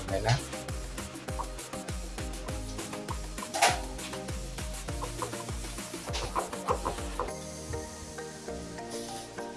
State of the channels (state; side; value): identical; both; correlation 1.00